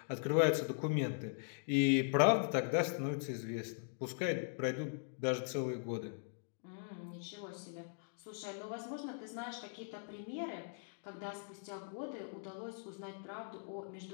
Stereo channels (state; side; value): silent; right; digital silence